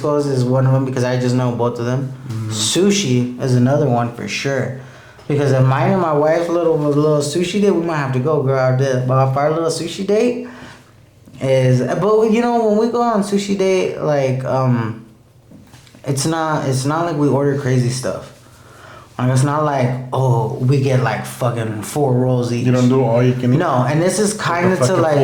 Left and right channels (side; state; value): both; identical; correlation 1.00